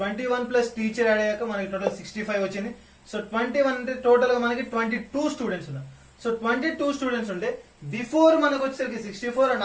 21 ప్లస్ టీచర్ యాడ్ అయ్యాక మనకి టోటల్ 65 వచ్చింది. సో 21 అంటే టోటల్ గా మనకి 22 స్టూడెంట్స్ ఉన్నారు. సో 22 స్టూడెంట్స్ ఉంటే బిఫోర్ మనకు వచ్చేసరికి 64 and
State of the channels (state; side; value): identical; both; correlation 1.00